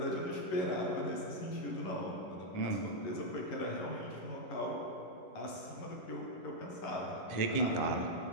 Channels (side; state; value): right; late; 11 ms